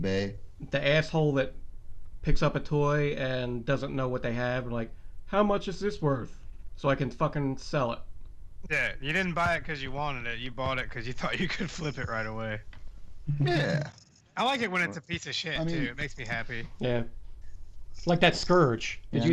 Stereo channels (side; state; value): both; identical; correlation 1.00